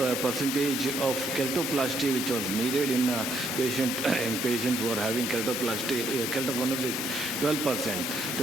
percentage of kertoplasty which was needed in patients who are having kertoplasty. Keratoconus is 12%.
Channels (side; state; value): both; normal; correlation 0.70